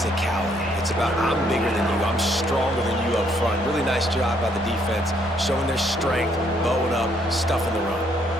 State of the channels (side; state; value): right; noise; rumble, 21 dB below the sound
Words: It's about I'm bigger than you, I'm stronger than you up front. Really nice job by the defense, showing their strength, bowing up, stuffing the run.